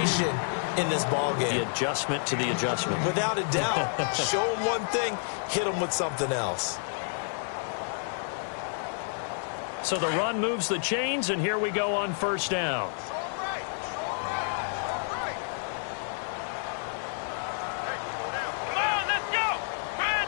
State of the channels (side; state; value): right; silent; digital silence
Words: in this ball game. The adjustment to the adjustment. Without a doubt. Show them one thing, hit them with something else. So the run moves the chains, and here we go on first down.